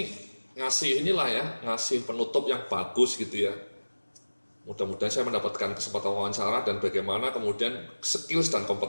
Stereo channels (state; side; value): inverted; both; correlation -1.00